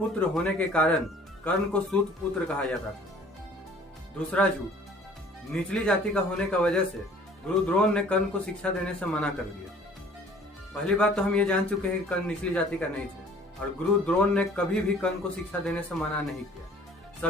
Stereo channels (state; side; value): normal; both; correlation 0.52